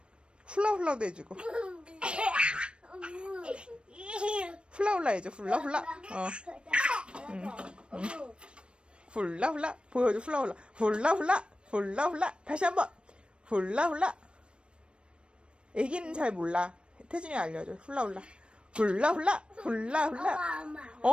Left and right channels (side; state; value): left; late; 0.057 ms